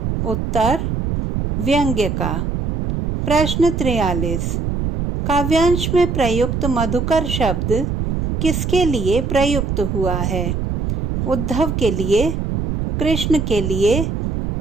उत्तर व्यंग्य का। प्रश्न 43। काव्यांश में प्रयुक्त मधुकर शब्द किसके लिए प्रयुक्त हुआ है? उद्धव के लिए, कृष्ण के लिए,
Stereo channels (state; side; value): noise; right; rumble, 2 dB below the sound